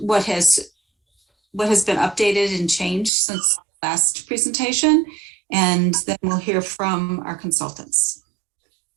has been updated and changed since last presentation, and then we'll hear from our consultants.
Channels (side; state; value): left; drops out; at 3.1 s